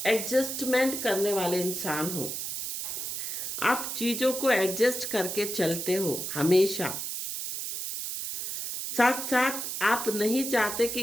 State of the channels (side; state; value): right; noise; hiss, 4 dB below the sound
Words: एडजस्टमेंट करने वाले इंसान हो, आप चीज़ों को एडजस्ट करके चलते हो हमेशा। साथ साथ आप नहीं चाहते कि